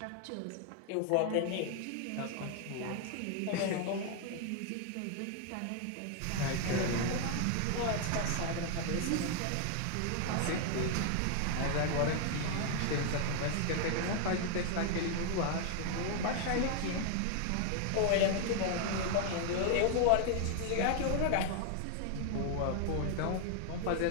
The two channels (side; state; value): both; different; correlation 0.00